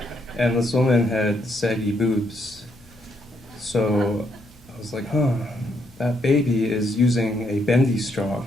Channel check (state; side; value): normal; both; correlation 0.74